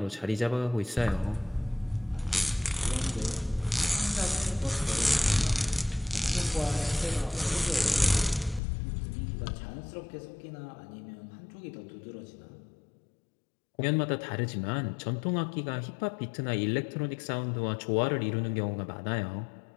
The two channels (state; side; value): drops out; right; at 8.6 s